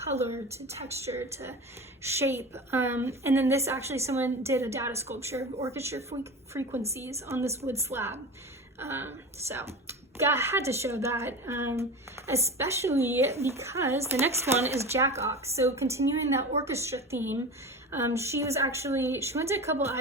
to texture, to shape. And then this, actually, someone did a data sculpture of orchestra frequencies on this wood slab. So I had to show that, especially because the next one is Jack Ox. So continuing that orchestra theme, She went to a couple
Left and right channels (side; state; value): both; normal; correlation 0.30